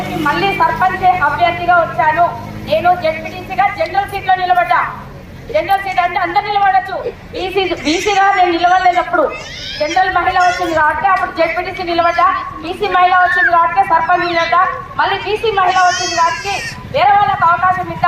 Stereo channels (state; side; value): identical; both; correlation 1.00